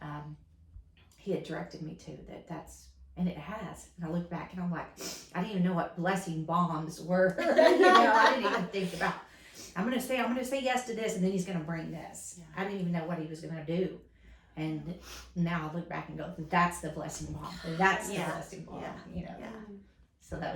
he had directed me to, and it has. And I look back and I'm like, I didn't even know what blessing bombs were. I didn't even think about, I'm gonna say yes to this, and then he's gonna bring this. I didn't even know what he was gonna do. And now I look back and go, that's the blessing bomb. That's the blessing bomb. So that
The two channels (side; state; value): both; identical; correlation 1.00